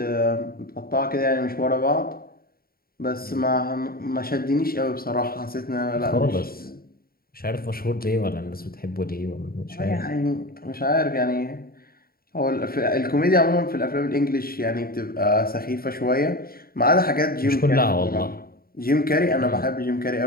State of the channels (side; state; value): right; late; 0.43 ms